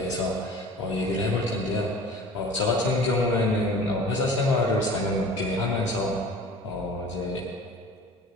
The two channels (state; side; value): normal; both; correlation 0.43